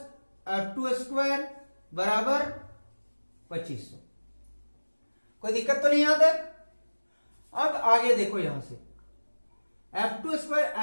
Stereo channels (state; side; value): inverted; both; correlation -1.00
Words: F2 square बराबर 2500। कोई दिक्कत तो नहीं आता? अब आगे देखो, यहां से F2